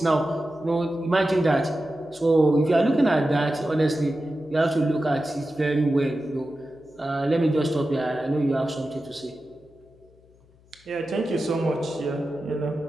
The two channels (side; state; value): left; noise; hum, 29 dB below the sound